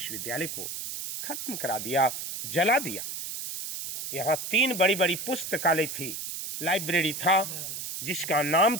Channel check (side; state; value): right; noise; hiss, 6 dB below the sound